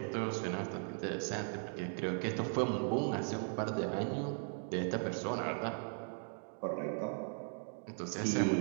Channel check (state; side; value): silent; left; 52 dB below the other